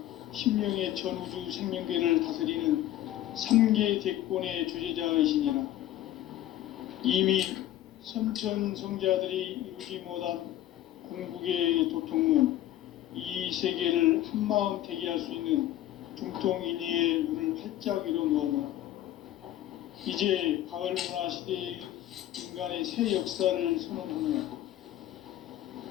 신명의 전우주 생명계를 다스리는 3계 대권의 주재자이시니라. 이미 선천성자들이 이루지 못한 궁극의 도통문, 이 세계를 한마음 대기할 수 있는 중통인의의 문을 활짝 열어 놓았노라. 이제 가을 문화 시대의 인간의 새 역사를 선언하노라.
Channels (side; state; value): right; quieter; 13.2 dB